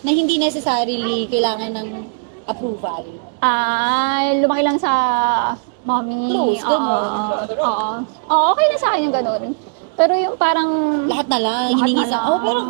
Na hindi necessarily kailangan ng approval. Lumaki lang sa mommy. Close, ganun. Oo. Oo, okay na sa akin yung ganun. Pero yung parang... Lahat na lang, hiningi na sa... lang. pero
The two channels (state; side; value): quieter; left; 38.4 dB